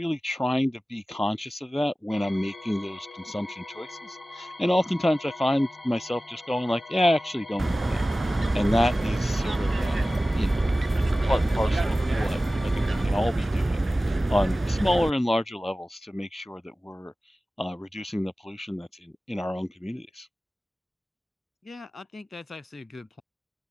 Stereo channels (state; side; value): normal; both; correlation 0.96